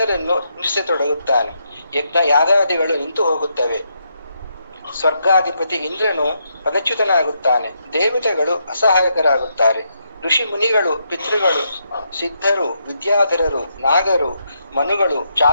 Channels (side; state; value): both; inverted; correlation -0.79